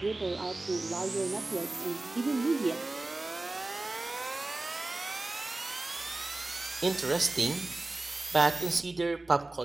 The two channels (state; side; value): quieter; left; 3.0 dB